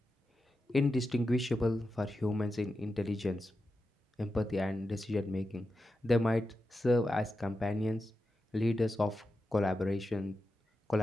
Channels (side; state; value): both; normal; correlation 0.90